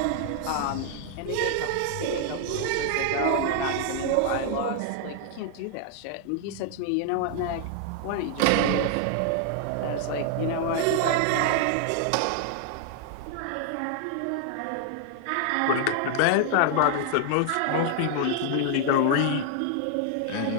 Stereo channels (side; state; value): both; different; correlation 0.00